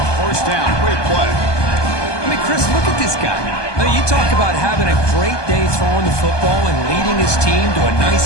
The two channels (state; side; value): late; right; 1.2 ms